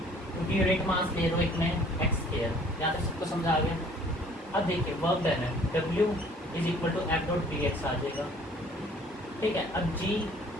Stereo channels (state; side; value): normal; both; correlation 0.55